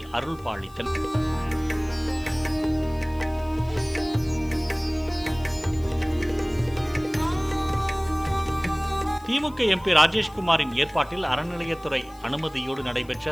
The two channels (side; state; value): left; noise; hiss, 26 dB below the sound